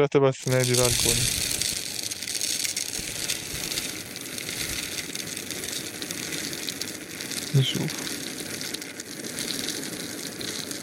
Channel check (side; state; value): both; identical; correlation 1.00